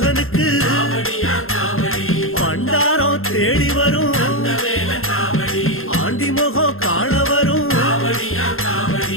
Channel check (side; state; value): right; late; 0.61 ms